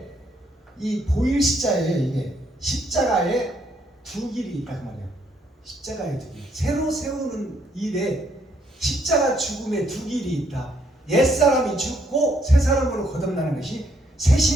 이 보일 시자에 이게 십자가에 두 길이 있다 그 말이야. 십자가에 두 길. 새로 세우는 일에 십자가 죽음에 두 길이 있다. 옛사람이 죽고 새 사람으로 거듭나는 것이 새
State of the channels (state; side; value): normal; both; correlation 0.71